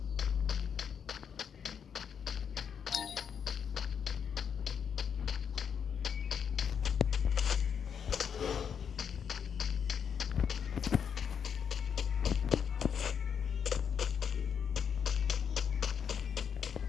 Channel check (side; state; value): right; quieter; 7.4 dB